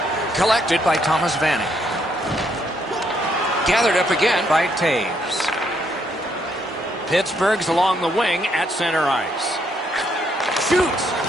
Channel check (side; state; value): both; normal; correlation 0.73